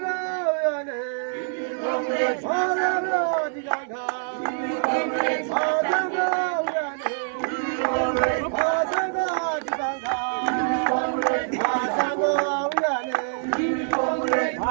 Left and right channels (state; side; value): silent; left; digital silence